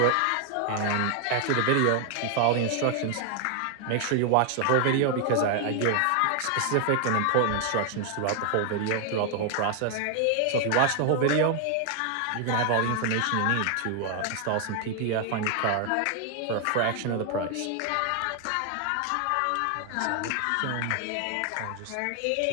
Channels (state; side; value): different; both; correlation 0.00